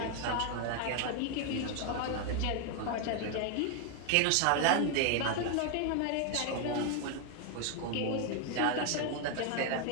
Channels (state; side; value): different; both; correlation 0.00